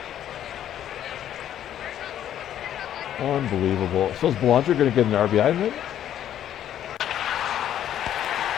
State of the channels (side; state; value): right; quieter; 10.8 dB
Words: Unbelievable. So is Belanger going to get an RBI in it?